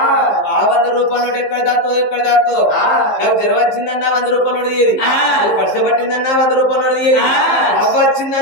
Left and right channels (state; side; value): late; right; 15 ms